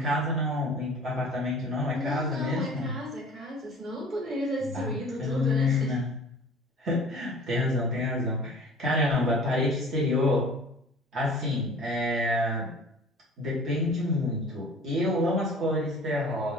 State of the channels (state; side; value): normal; both; correlation 0.45